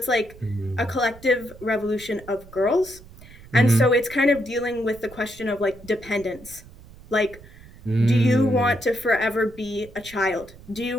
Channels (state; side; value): noise; right; rumble, 20 dB below the sound